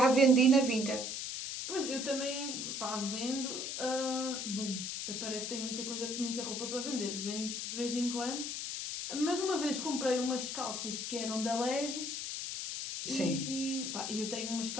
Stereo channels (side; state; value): left; noise; hiss, 4 dB below the sound